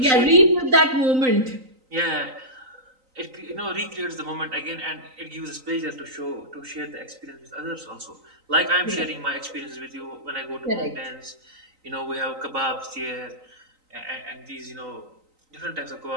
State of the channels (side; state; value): left; late; 3.9 ms